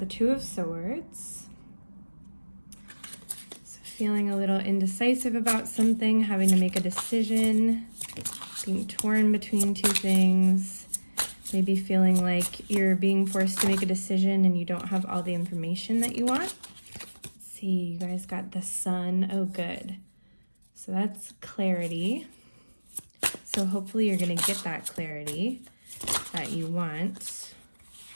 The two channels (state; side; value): inverted; both; correlation -1.00